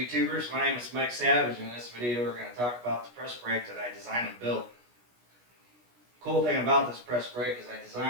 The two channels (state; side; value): late; left; 16 ms